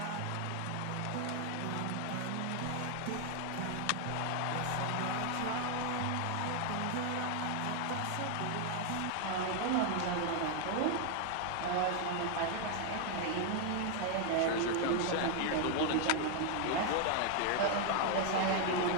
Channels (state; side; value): different; both; correlation 0.00